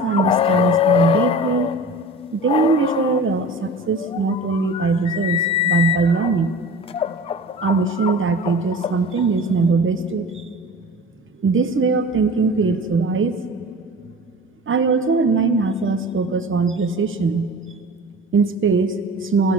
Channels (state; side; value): normal; both; correlation 0.38